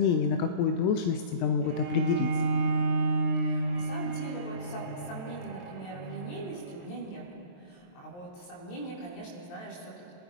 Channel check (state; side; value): late; right; 23 ms